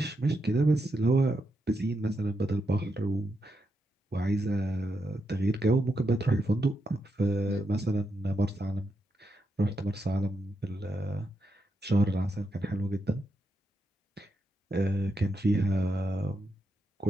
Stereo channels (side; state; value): both; normal; correlation 0.84